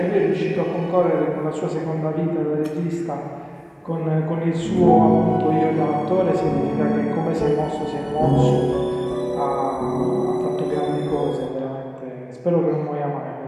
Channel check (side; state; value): both; identical; correlation 1.00